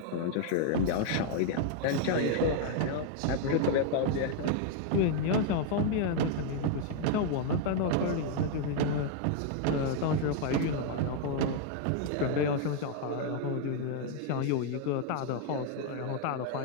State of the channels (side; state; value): both; different; correlation 0.00